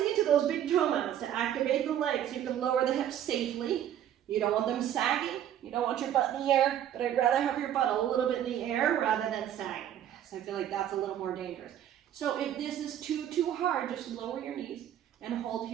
into those big toe mounts to activate the legs. You can lower the hips safely. You don't want them sagging. You don't want your butt in the air, but I'd rather have your butt a little bit in the air rather than sagging. So I feel like that's a little more dangerous. So if this is too hard, just lower your knees and hold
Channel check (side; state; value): left; quieter; 10.8 dB